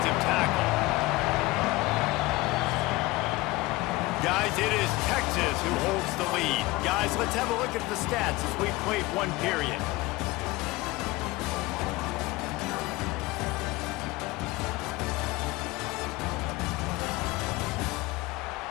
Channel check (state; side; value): quieter; right; 20.8 dB